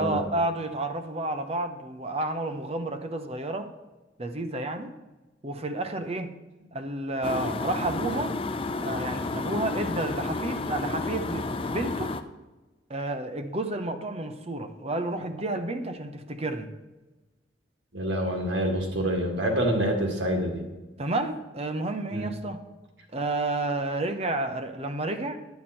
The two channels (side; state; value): both; normal; correlation 0.26